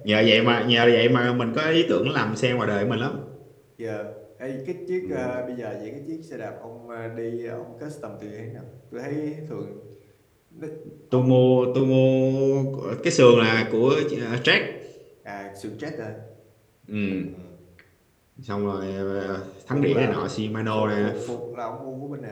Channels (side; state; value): both; identical; correlation 1.00